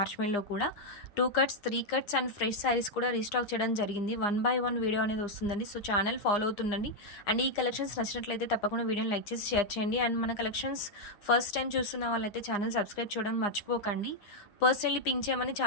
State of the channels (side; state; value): right; late; 9.7 ms